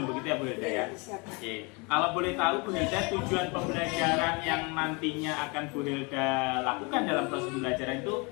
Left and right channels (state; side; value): quieter; right; 29.7 dB